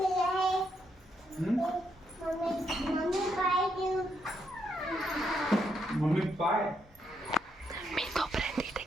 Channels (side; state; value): both; normal; correlation 0.78